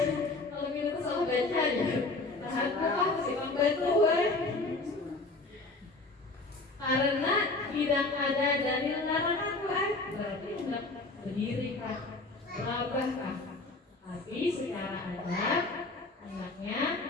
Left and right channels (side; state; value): right; quieter; 3.3 dB